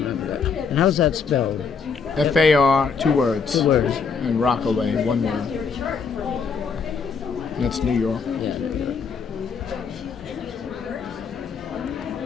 that. And how's that spelled? F-A-R, 2 words. 2 words. And Rockaway, 1 word. That's New York. Yeah.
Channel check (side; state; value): right; quieter; 5.6 dB